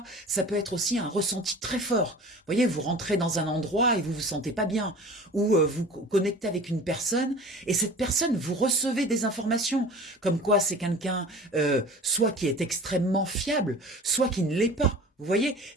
Ça peut être aussi un ressenti très fort. Vous voyez, vous rentrez dans un endroit et vous vous sentez pas bien, ou vous connectez avec une personne et cette personne, vous recevez des informations comme quoi c'est quelqu'un soit qui est extrêmement fiable, soit qui ne l'est pas. Vous voyez,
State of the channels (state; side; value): normal; both; correlation 0.41